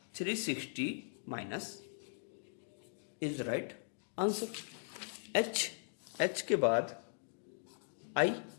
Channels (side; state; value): right; silent; digital silence